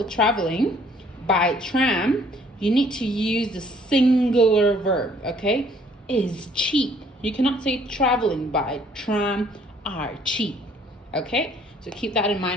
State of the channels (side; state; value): both; normal; correlation 0.60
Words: traveling by tram, you need to use the singular verb, okay? Is cheap. You cannot say traveling by tram are cheap, okay? So keep that in